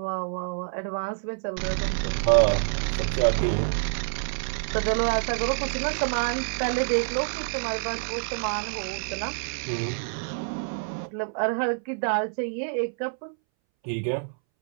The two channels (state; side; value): silent; left; 60 dB below the other